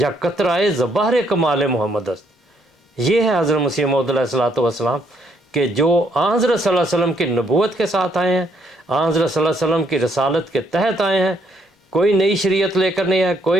قطرائے زبہر کمال محمد است. یہ ہے حضرت مسیح موعود علیہ الصلوۃ والسلام کہ جو آن حضرت صلی اللہ علیہ وسلم کی نبوت کے ساتھ آئے ہیں، آن حضرت صلی اللہ علیہ وسلم کی رسالت کے تحت آئے ہیں، کوئی نئی شریعت لے کر نہیں آئے،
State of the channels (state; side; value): normal; both; correlation 0.70